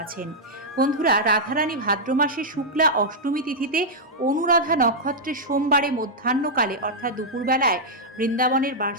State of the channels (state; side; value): normal; both; correlation -0.06